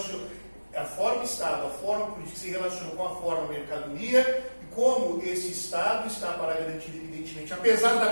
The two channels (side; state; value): both; inverted; correlation -1.00